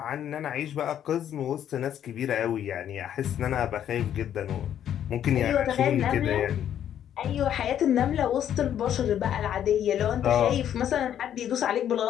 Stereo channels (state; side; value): quieter; right; 10.1 dB